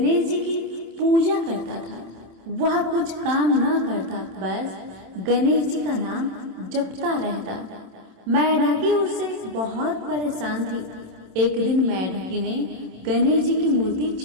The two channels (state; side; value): late; left; 27 ms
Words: जी की पूजा करता था। वह कुछ काम न करता, बस गणेश जी का नाम जपता रहता। मेढकी उससे बहुत परेशान थी। एक दिन मेढकी ने गणेश जी की मूर्ति